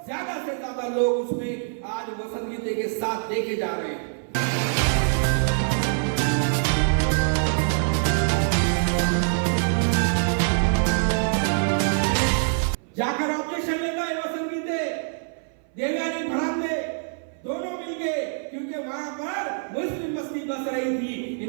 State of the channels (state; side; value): silent; left; 58 dB below the other